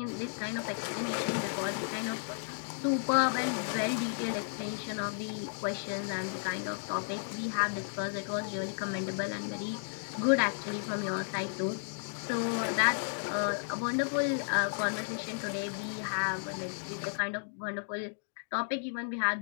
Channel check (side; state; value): right; silent; digital silence